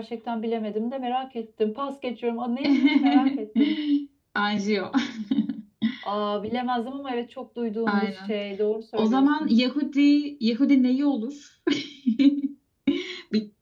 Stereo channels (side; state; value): both; identical; correlation 1.00